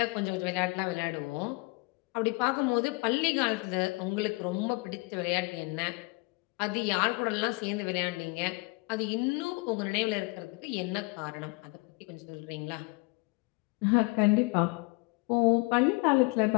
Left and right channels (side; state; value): right; quieter; 27.4 dB